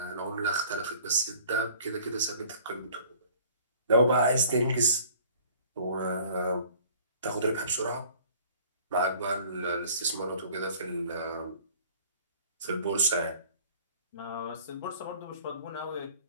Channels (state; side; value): inverted; both; correlation -0.51